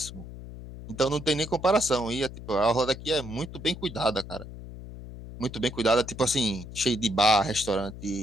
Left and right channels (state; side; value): noise; left; hum, 13 dB below the sound